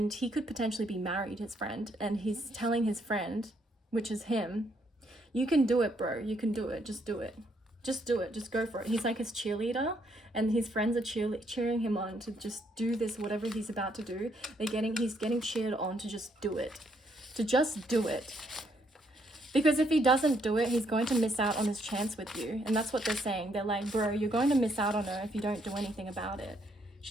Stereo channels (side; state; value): both; normal; correlation 0.72